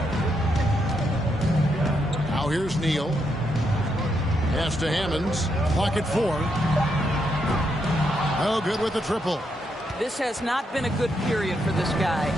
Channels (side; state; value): both; normal; correlation 0.79